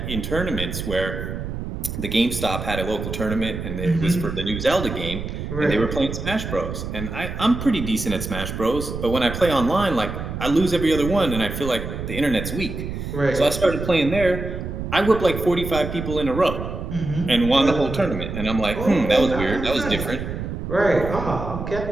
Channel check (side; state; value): right; noise; rumble, 6 dB below the sound